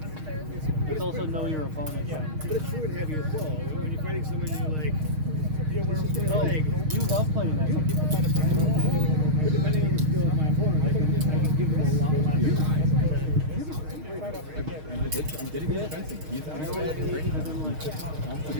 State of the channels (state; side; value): late; left; 6.4 ms